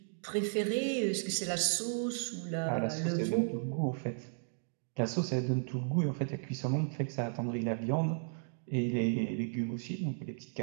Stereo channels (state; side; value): silent; left; digital silence